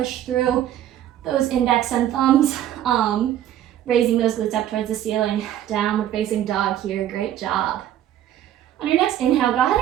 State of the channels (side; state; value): left; quieter; 11.6 dB